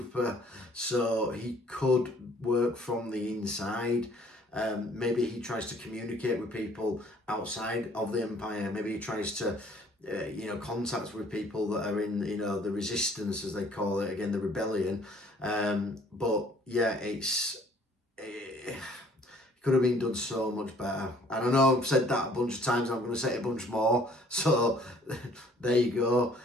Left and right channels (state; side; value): normal; both; correlation 0.58